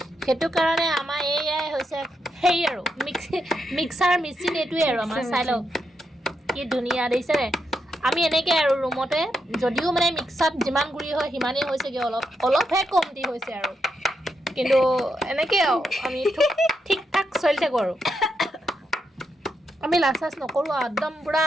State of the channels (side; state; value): both; normal; correlation 0.82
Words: সেইটো কাৰণে আমাৰ এয়াই হৈছে সেই আৰু মিক্সাৰ মেচিন এইটোৱে আৰু আমাৰ চাই লওক কি ধুনীয়া দেখিছেনে আমি এনেকৈ আৰু ৰুমতে যদিও মানে মিক্সাত যিমান গুড়ি হয় সিমানেই হৈছেগৈ অলপহে কমতি হৈছে আৰু কিন্তু এনেকৈ আৰু আমি ঠিক ঠাক চলি থাকোঁ আৰু আমি লাজ চাজ নকৰোঁ আৰু একদম পূৰা